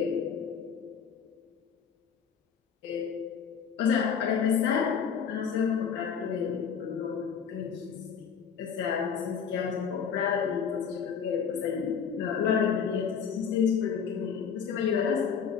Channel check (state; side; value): quieter; right; 6.9 dB